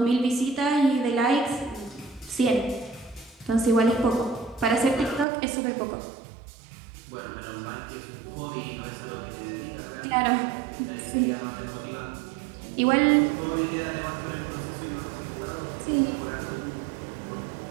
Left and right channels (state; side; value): drops out; left; at 5.2 s